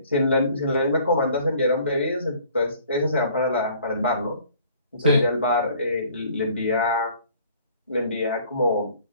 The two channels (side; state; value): both; inverted; correlation -0.54